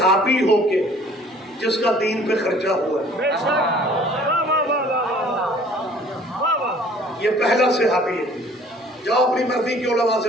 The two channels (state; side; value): normal; both; correlation 0.53